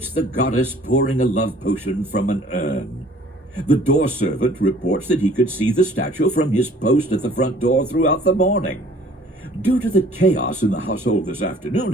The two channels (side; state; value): both; normal; correlation 0.53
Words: the goddess pouring a love potion from an urn. The door servant reports that he could see the statue from his post at the front door throughout the morning. Due to the chaos in the household this afternoon,